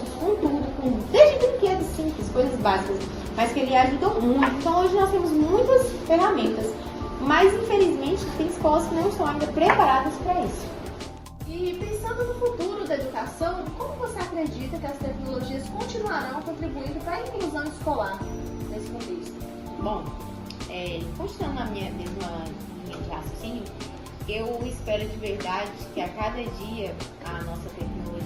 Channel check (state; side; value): identical; both; correlation 1.00